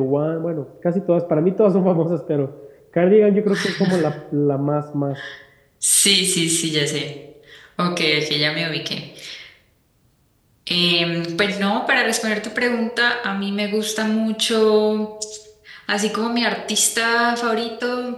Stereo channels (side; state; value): both; identical; correlation 1.00